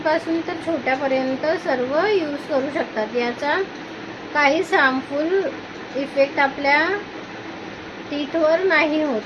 तर छोट्यापर्यंत सर्व यूज करू शकतात। याचा काहीच हार्मफुल इफेक्ट आपल्या टीथवर नाही होत।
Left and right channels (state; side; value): identical; both; correlation 1.00